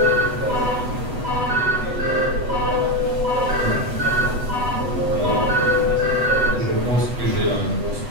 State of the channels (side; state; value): left; late; 8.0 ms